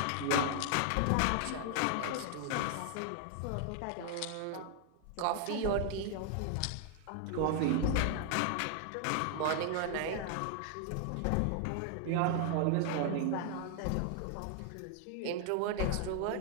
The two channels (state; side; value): different; both; correlation 0.00